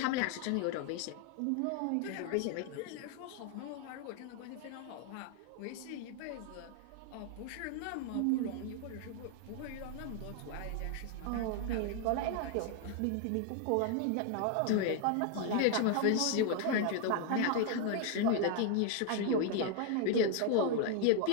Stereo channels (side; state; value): both; different; correlation 0.00